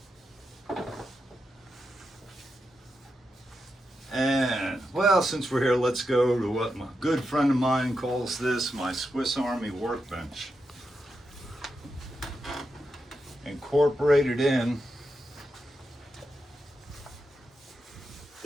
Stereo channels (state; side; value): normal; both; correlation 0.87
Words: And, well, since we're here, let's go to what my good friend of mine calls this my Swiss Army workbench. Incorporated in,